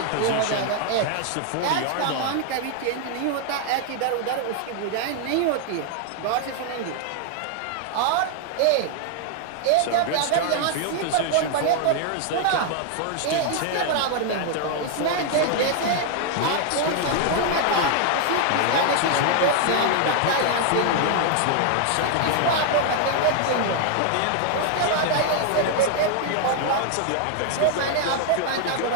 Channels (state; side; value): different; both; correlation 0.00